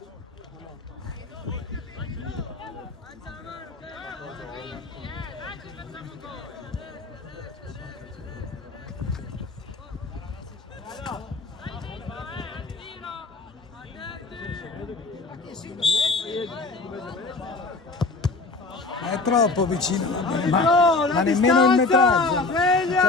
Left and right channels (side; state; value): right; quieter; 3.6 dB